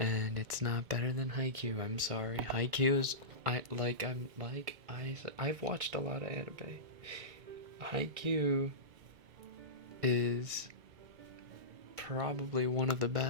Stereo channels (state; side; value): late; left; 2.2 ms